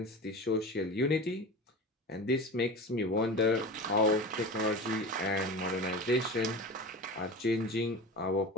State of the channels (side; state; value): both; normal; correlation 0.31